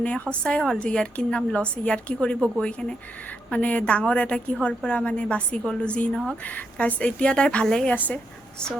সঁচাই হ'ল যে ইয়াৰ কি নাম লছ ইয়াৰ কি কৰিব গৈ কেনে মানে ডাঙৰ এটা কিহৰ পৰা মানে বাচি গ'লোঁ যি নহওক গাইছ এতিয়া তাই ভালেই আছে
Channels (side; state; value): both; normal; correlation 0.80